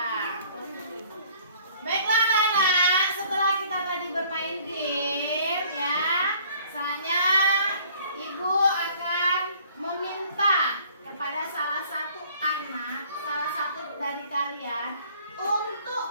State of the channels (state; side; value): inverted; both; correlation -0.56